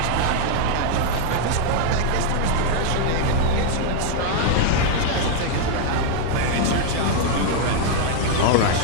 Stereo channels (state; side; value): different; both; correlation 0.00